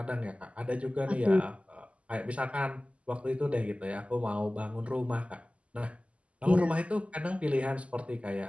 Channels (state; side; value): late; left; 0.061 ms